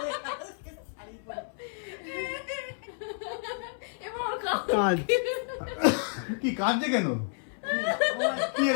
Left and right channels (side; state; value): right; silent; 58 dB below the other